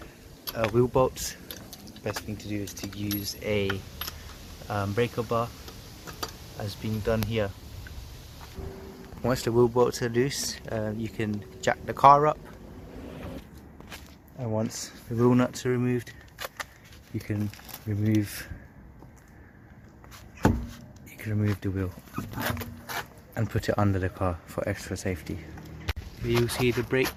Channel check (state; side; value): identical; both; correlation 1.00